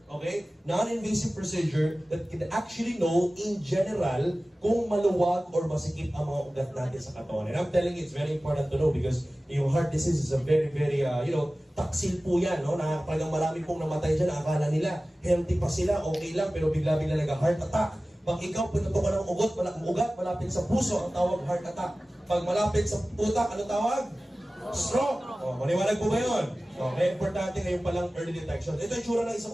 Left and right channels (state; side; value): normal; both; correlation 0.97